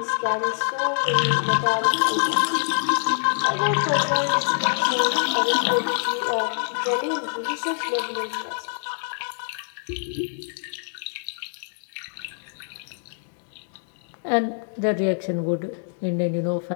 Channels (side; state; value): right; silent; digital silence